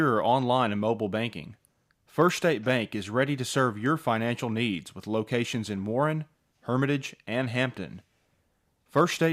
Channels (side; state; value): both; identical; correlation 1.00